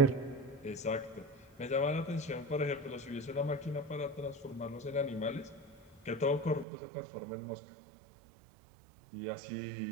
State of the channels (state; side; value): drops out; left; at 6.7 s